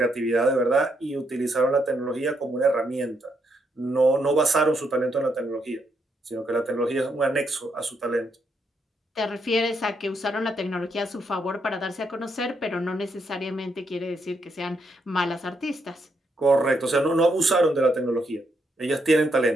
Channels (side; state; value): both; normal; correlation 0.77